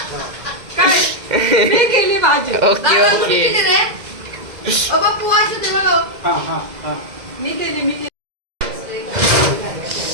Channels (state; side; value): late; left; 2.0 ms